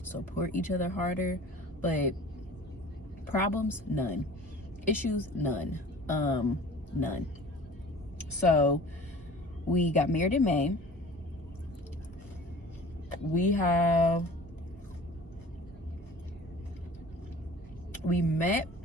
support each other harder, but problems, none. Issues, none. None. So we got married in May. We met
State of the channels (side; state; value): both; normal; correlation 0.44